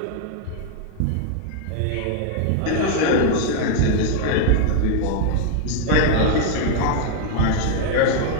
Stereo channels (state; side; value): different; both; correlation 0.00